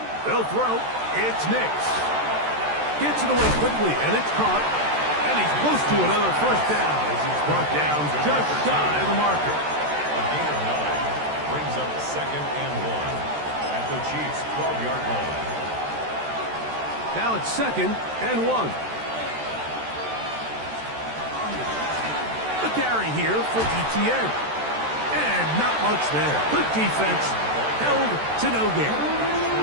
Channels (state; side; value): late; left; 13 ms